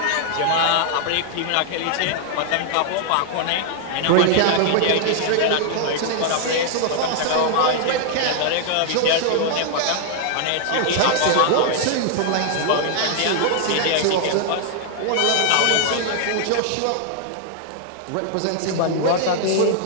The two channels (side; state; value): both; different; correlation -0.01